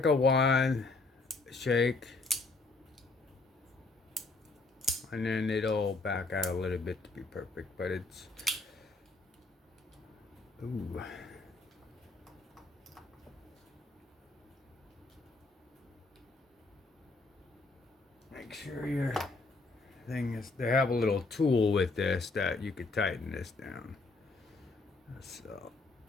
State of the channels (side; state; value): right; quieter; 3.5 dB